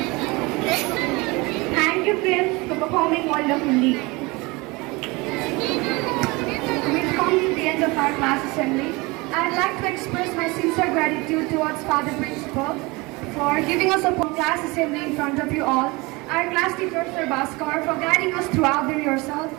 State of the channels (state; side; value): quieter; left; 24.4 dB